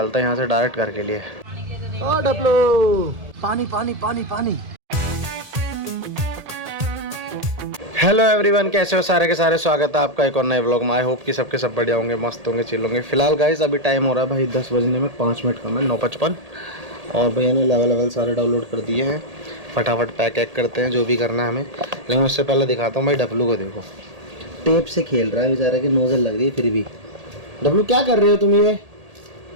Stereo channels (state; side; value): late; left; 1.8 ms